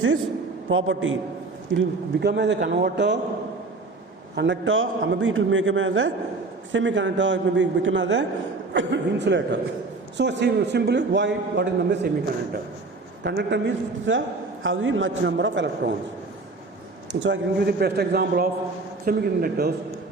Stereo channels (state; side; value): quieter; left; 3.6 dB